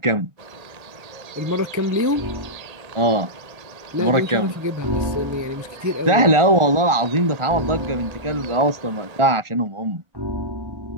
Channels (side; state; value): left; late; 1.4 ms